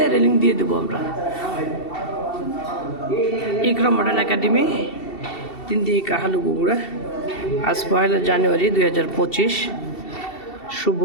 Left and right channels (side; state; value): right; late; 2.7 ms